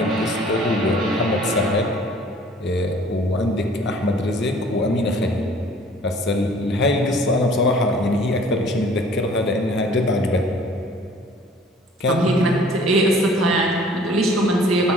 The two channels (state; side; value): normal; both; correlation 0.53